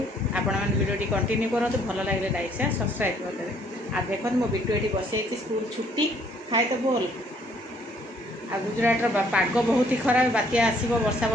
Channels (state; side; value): normal; both; correlation 0.64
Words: आपण मैंने वीडियो कंटिन्यू करूँ भल लगे लाइक शेयर सब्सक्राइब करदे। आ देखो मो बिटू ये बसई स्कूल छुट्टी खाए तो बोल आ गुजरातर पाग बहुत ही खराब बात्या आसो वर्षा